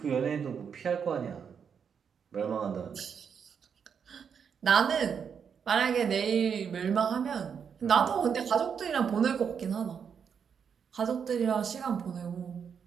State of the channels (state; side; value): quieter; left; 7.0 dB